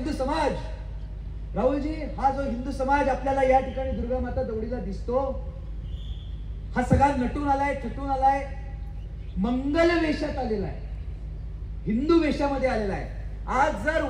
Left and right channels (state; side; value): identical; both; correlation 1.00